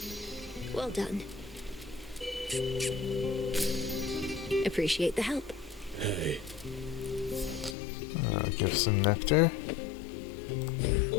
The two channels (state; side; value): drops out; right; at 7.8 s